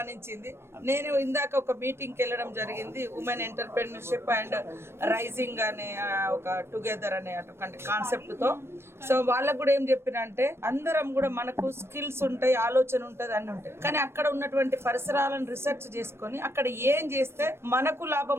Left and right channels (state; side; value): late; left; 0.12 ms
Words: నేను ఇందాక ఒక మీటింగ్కి వెళ్ళడం జరిగింది, ఉమెన్ ఎంటర్ప్రెన్యూర్షిప్ అండ్ రైజింగ్ అనే ఒక టుగెదర్ అనే అటువంటి కాన్సెప్ట్తో. సో వాళ్ళకు కూడా ఏం చెప్పినంటే అందరం కూడా మనకు స్కిల్స్ ఉంటాయి, ఆలోచన ఉంటుంది, అన్నీ ఉంటాయి. కానీ అక్కడ ఉన్నటువంటి పరిసరాలను రీసెర్చ్ చేసుకొని అక్కడ ఏం చేస్తే మనకు